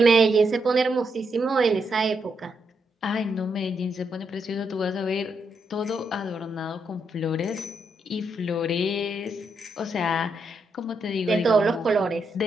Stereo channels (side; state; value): both; normal; correlation 0.80